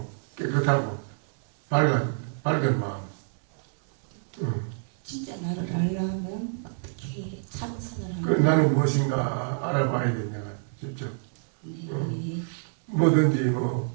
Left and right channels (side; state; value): left; silent; 60 dB below the other